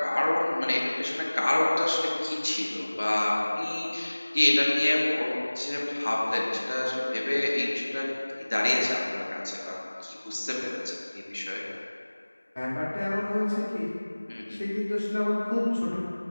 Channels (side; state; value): both; inverted; correlation -1.00